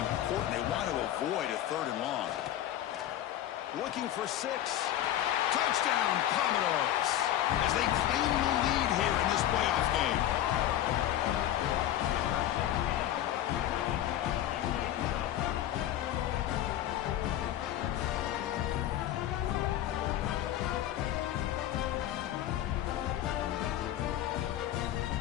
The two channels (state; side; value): quieter; right; 12.3 dB